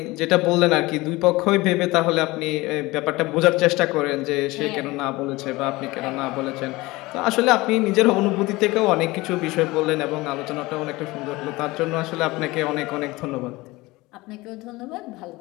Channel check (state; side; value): quieter; right; 21.1 dB